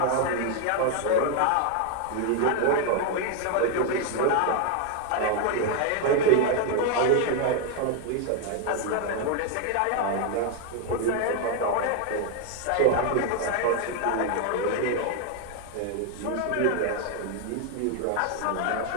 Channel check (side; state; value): both; different; correlation 0.01